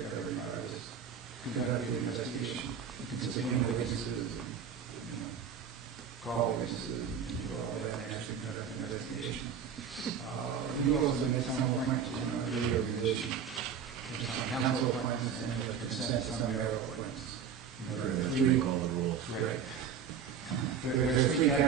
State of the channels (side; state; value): left; quieter; 7.2 dB